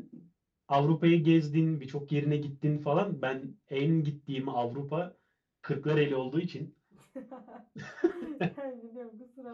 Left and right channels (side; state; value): both; identical; correlation 1.00